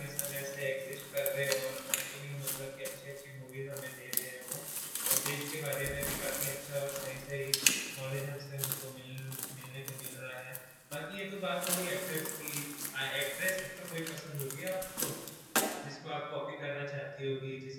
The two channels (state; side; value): identical; both; correlation 1.00